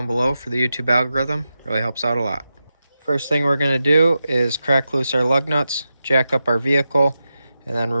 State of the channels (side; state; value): both; inverted; correlation -0.90